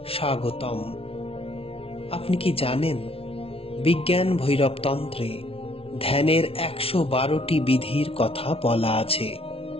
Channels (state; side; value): late; right; 0.27 ms